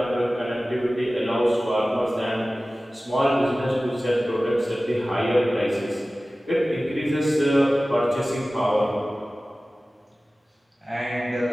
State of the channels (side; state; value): both; normal; correlation 0.97